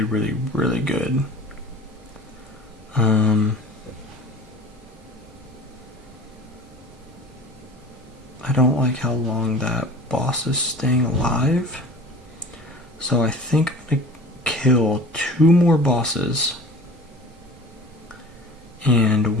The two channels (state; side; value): normal; both; correlation 0.41